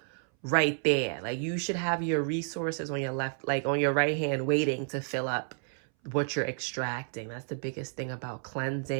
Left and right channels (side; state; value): left; silent; 57 dB below the other